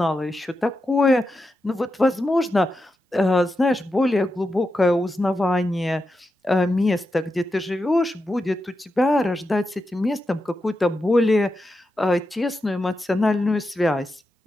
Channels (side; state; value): both; normal; correlation 0.88